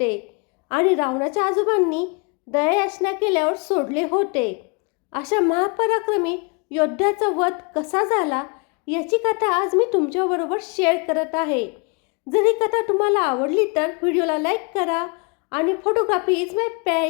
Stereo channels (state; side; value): quieter; right; 33.4 dB